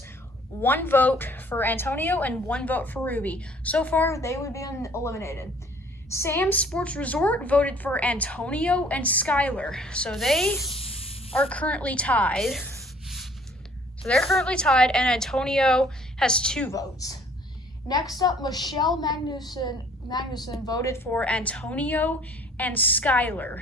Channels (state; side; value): normal; both; correlation 0.56